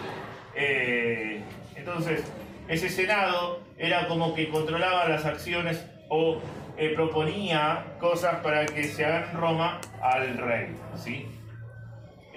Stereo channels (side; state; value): both; identical; correlation 1.00